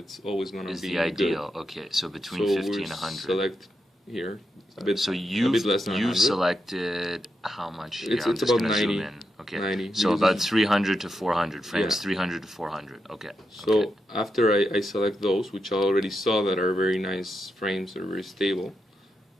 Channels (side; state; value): both; normal; correlation 0.85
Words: always going to Is be the ideal. Good. Okay, so between So 50 we and 100. select here a bit. So a you bit less than you 100. selected how much? It's I'm just about gonna 90, Zoom in. Okay. 90, So because about it's- 300 to 400 frames. Yeah. 300 to 400. Okay. So okay. after I select those, which I already saw that are very nice frames, they're very stable,